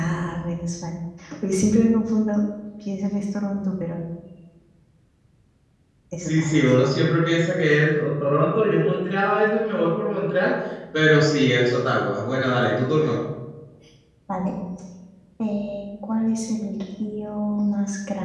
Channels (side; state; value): both; identical; correlation 1.00